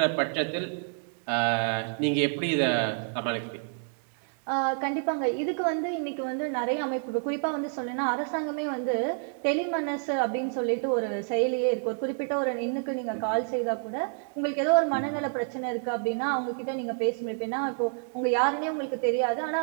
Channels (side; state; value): left; silent; 59 dB below the other